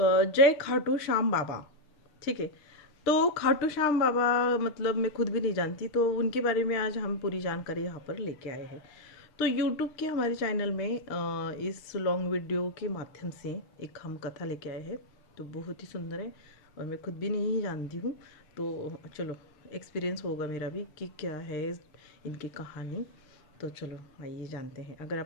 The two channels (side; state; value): right; late; 6.6 ms